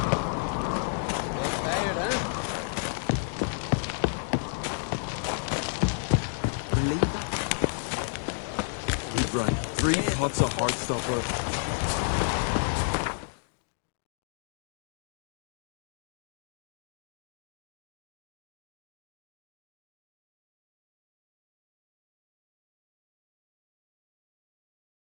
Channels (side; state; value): right; silent; digital silence